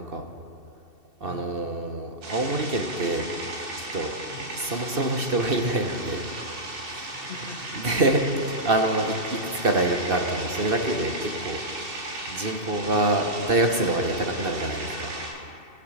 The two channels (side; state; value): left; late; 2.7 ms